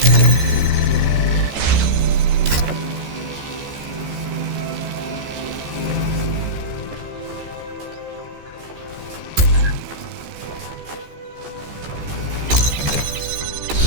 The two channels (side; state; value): left; late; 14 ms